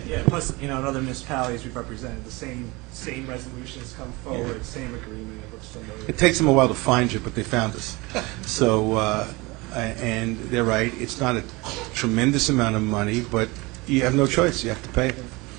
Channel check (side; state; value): left; quieter; 24.0 dB